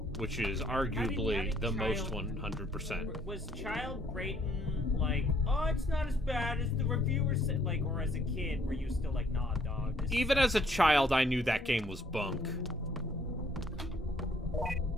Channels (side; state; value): both; normal; correlation 0.65